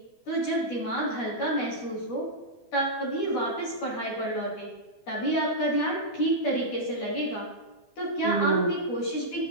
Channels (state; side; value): late; right; 12 ms